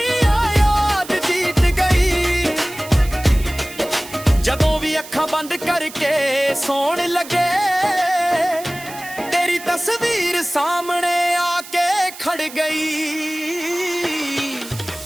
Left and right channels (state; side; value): noise; right; hiss, 15 dB below the sound